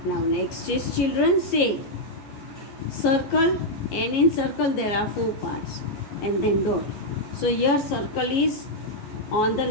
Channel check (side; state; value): right; late; 14 ms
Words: Now next is children say circle, and in circle there are 4 parts and then dot. So here circle is on the